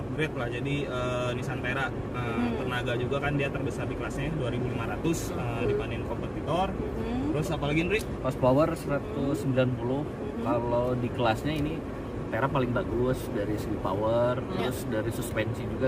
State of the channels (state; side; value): identical; both; correlation 1.00